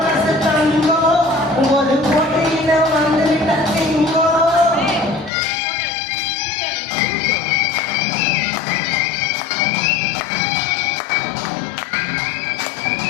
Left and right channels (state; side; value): drops out; right; at 5.3 s